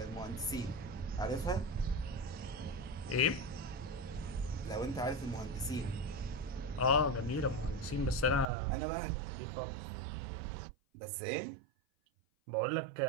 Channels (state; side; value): drops out; left; at 8.5 s